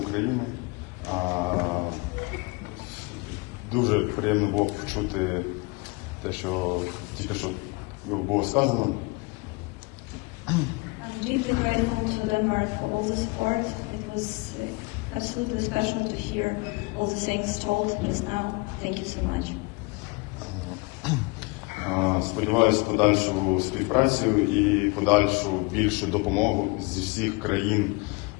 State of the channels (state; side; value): quieter; right; 26.7 dB